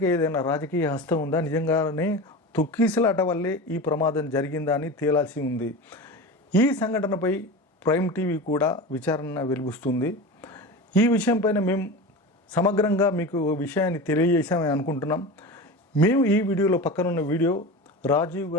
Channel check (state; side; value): normal; both; correlation 0.28